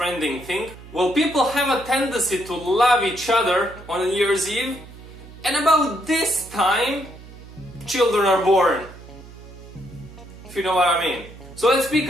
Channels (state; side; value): noise; right; hum, 18 dB below the sound